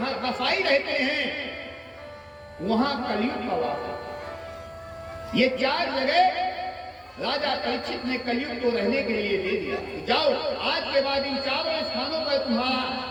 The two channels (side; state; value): both; identical; correlation 1.00